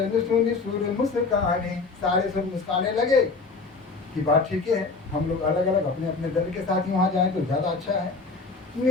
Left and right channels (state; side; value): quieter; right; 4.1 dB